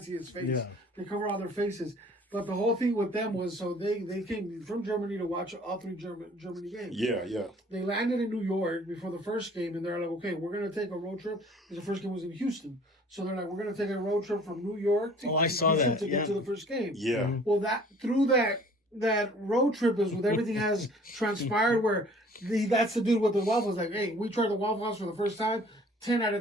see his face. Yeah. They cover all their faces. But the whole thing with them was so they came from Germany to watch all 3 Germany games. Yeah. They landed in New York before the first game, and they're like, okay, we're going to take a road trip. Because the first game was in Houston. So they're like, we're going to take a road trip from New York to I saw Houston that, to get yeah. to the first game. Yeah. Well, through that road trip is with everything has transpired where that's the dude with the waffles. Like, hey, we tried the Waffle House for the first time. 10 out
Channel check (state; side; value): normal; both; correlation 0.52